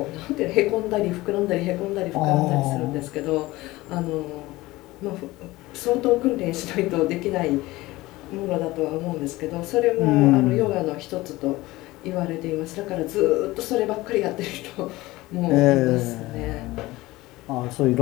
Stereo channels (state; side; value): quieter; right; 19.2 dB